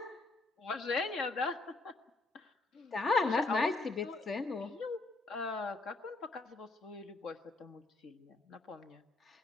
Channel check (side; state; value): right; quieter; 3.3 dB